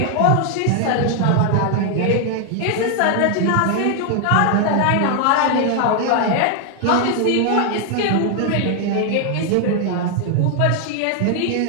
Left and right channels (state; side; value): different; both; correlation 0.00